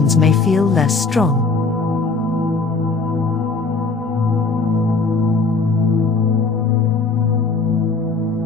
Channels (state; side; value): quieter; right; 4.0 dB